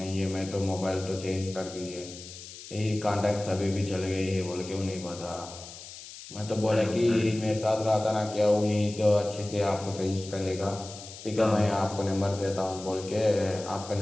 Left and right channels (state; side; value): noise; left; hiss, 14 dB below the sound